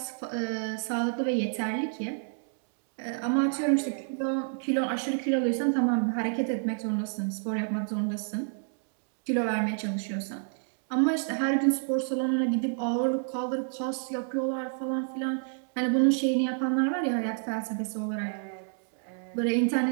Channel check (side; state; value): left; silent; digital silence